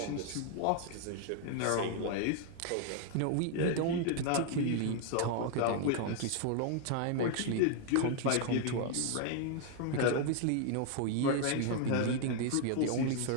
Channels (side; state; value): both; different; correlation 0.00